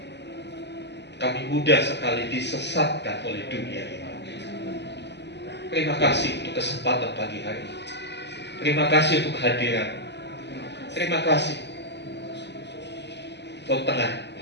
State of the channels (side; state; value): right; late; 0.50 ms